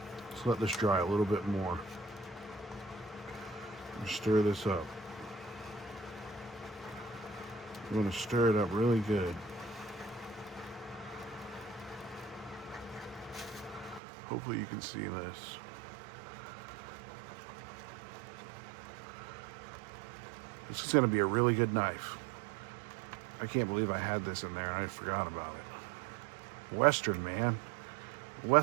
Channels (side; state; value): left; drops out; at 14.0 s